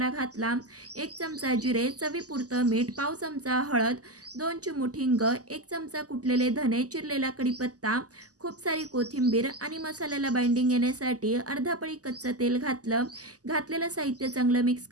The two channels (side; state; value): left; late; 0.67 ms